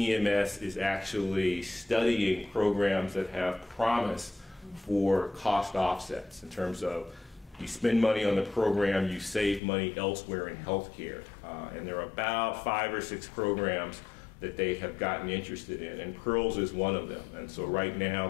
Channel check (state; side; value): drops out; right; at 9.6 s